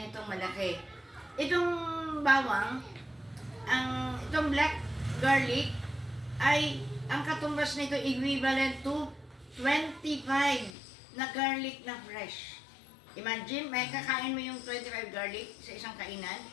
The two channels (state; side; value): drops out; right; at 10.7 s